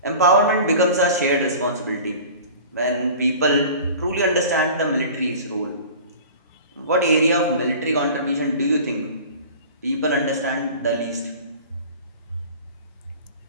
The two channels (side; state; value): both; inverted; correlation -0.40